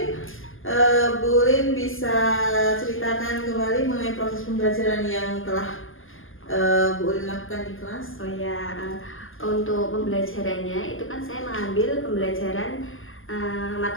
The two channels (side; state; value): right; late; 0.59 ms